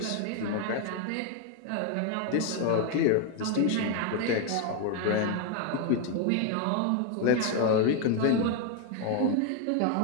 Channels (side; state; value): both; different; correlation 0.01